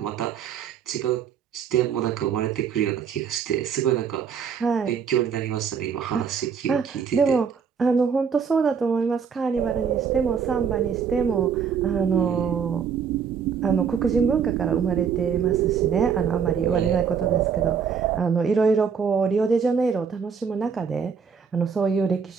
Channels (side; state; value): left; quieter; 6.7 dB